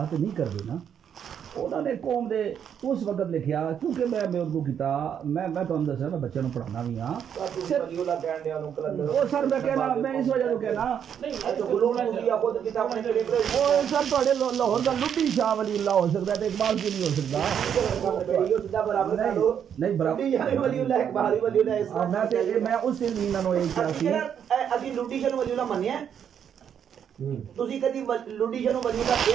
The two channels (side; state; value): left; quieter; 8.5 dB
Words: ते नहीं करदे ना उन्होंने कौम दे उस वक्त लिखा क्योंकि मैं उर्दू किया मैं तुहानू दस्या मैं बच्चों को पढ़ाना भी हाँ सर मैं कहना मैं इस वजह तो कहना सर थोड़े लाहौर का लुड्डी शाह वलीउल्लाह हो सकता है इकबाल क्यों नहीं हो सकता मैं उस दिन भी इन्होंने यही कहा सी ਅਸੀਂ ਲੁੱਡੀ ਸ਼ਾਹ ਨੂੰ ਵਲੀਉਲਾ ਮੰਨਿਆ ਤੁਸੀਂ ਕਦੀ ਲੁੱਡੀ ਸ਼ਾਹ ਨੂੰ ਵਲੀਉਲਾ